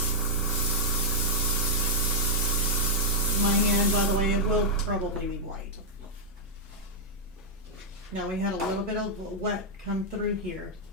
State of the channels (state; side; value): normal; both; correlation -0.05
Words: My hand, by the way, it will probably be white. Now we had a little bit of wet come through here,